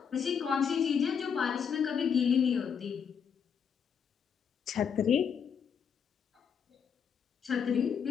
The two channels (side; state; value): right; quieter; 7.1 dB